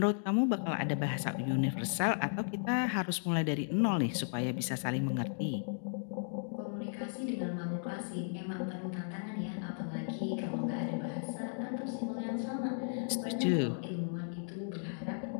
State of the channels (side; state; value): right; silent; digital silence